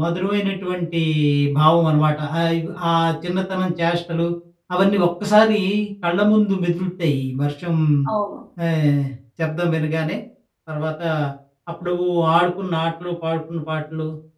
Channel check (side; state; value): both; identical; correlation 1.00